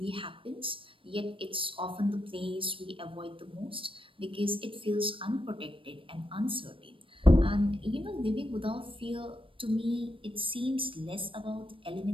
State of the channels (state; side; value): late; left; 0.25 ms